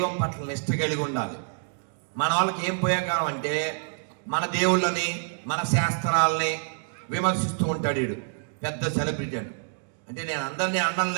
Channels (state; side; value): silent; left; digital silence